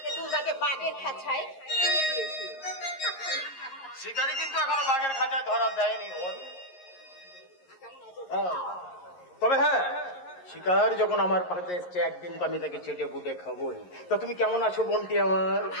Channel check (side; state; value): right; late; 11 ms